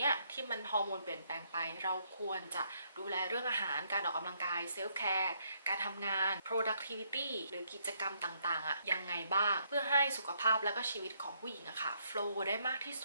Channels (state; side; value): inverted; both; correlation -0.72